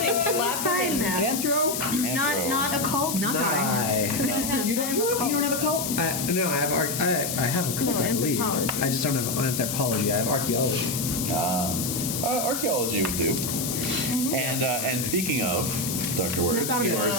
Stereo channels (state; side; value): noise; left; hiss, 3 dB below the sound